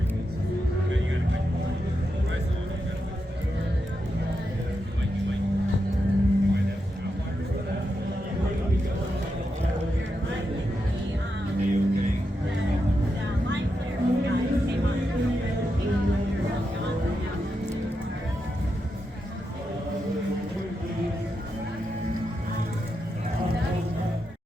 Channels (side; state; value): both; normal; correlation 0.86